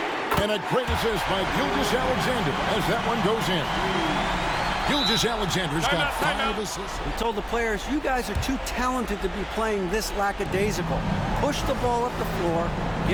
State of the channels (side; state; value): both; identical; correlation 1.00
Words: And a great assist by Gilgeous-Alexander as that one goes in. Gilgeous-Alexander's got 5 assists. He told the players, you guys are too talented to be playing this lackadaisical. Push the ball up the floor,